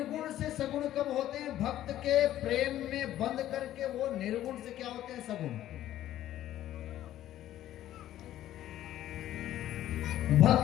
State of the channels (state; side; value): quieter; right; 13.0 dB